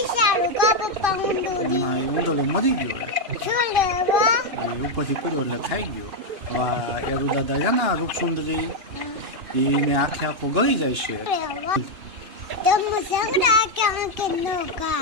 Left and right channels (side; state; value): left; late; 2.5 ms